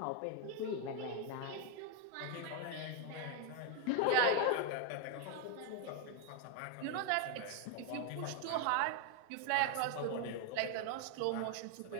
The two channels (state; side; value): different; both; correlation 0.01